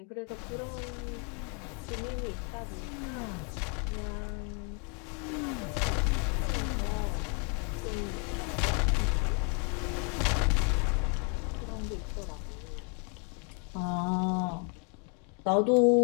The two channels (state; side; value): quieter; right; 37.5 dB